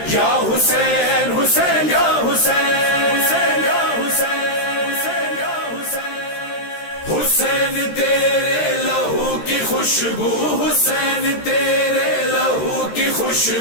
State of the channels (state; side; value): late; right; 13 ms